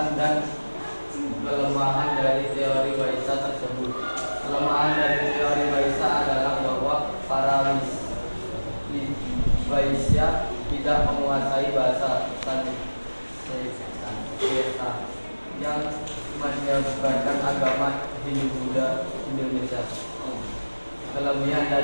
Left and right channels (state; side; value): inverted; both; correlation -1.00